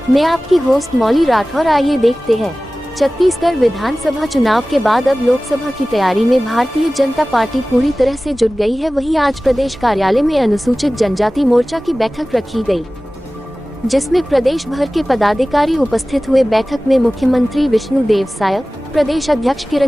मैं आपकी होस्ट मौली राठौर। आइए देखते हैं। छत्तीसगढ़ विधानसभा चुनाव के बाद अब लोकसभा की तैयारी में भारतीय जनता पार्टी पूरी तरह से जुट गई है। वहीं आज प्रदेश कार्यालय में अनुसूचित जनजाति मोर्चा की बैठक रखी गई, जिसमें प्रदेश भर के पदाधिकारी उपस्थित हुए। बैठक में मुख्यमंत्री विष्णुदेव साय, प्रदेश अध्यक्ष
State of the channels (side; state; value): both; normal; correlation 0.97